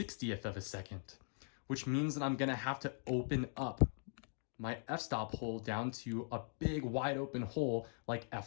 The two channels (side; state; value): right; silent; 50 dB below the other